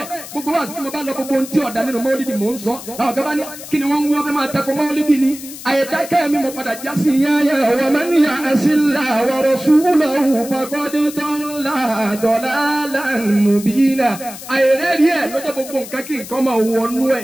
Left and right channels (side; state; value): left; noise; hiss, 13 dB below the sound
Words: gbogbo wa sí mo bá lọ gbogbo ohun tí ọ̀dà nínú Maulidi mò ń sọ àwọn kan bá ní kí ni wọ́n ń wọ́n fẹ́ máa tẹ́kọ̀ Maulidi ni àyèdákẹ́ mi mo padà já sí yáyà wa man ya'silla wa rasulahu faqad dalla dalalan mubina àyèrẹ́rì ẹ̀ lọ́jọ́ gbogbo nǹkan kí nǹkan máa wọnú ẹ̀